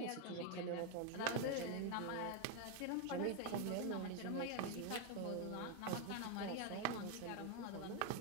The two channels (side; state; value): both; different; correlation 0.01